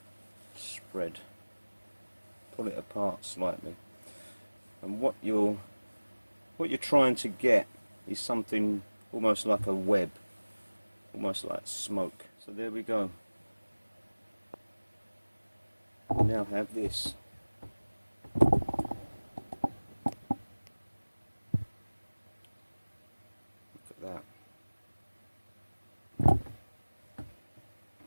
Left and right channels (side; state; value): both; inverted; correlation -1.00